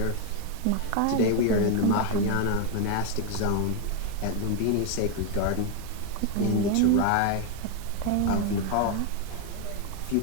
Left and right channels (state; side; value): different; both; correlation 0.01